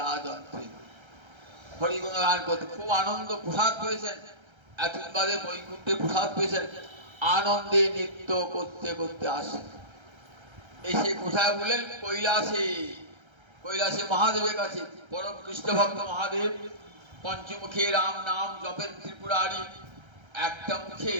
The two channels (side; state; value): left; late; 1.3 ms